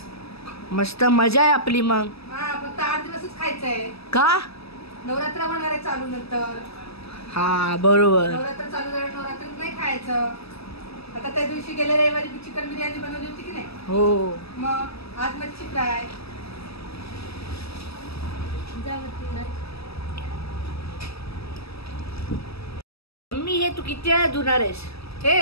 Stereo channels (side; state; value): right; late; 0.78 ms